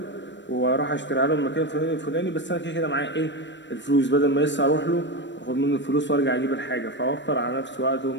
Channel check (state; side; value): late; right; 0.53 ms